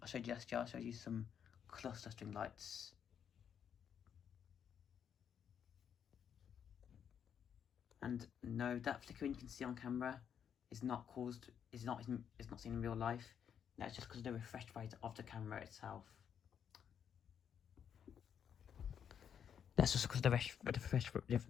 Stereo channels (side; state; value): right; quieter; 8.2 dB